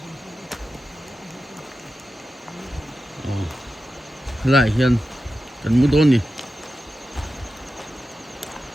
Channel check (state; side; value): normal; both; correlation 0.91